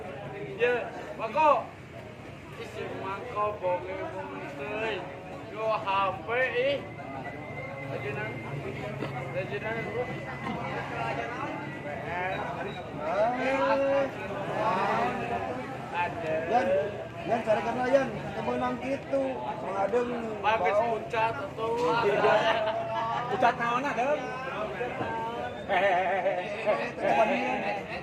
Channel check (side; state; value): both; identical; correlation 1.00